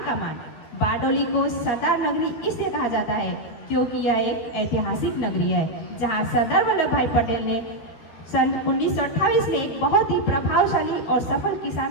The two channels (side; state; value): right; late; 13 ms